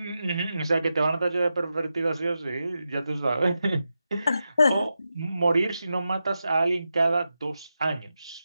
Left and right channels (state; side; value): inverted; both; correlation -0.89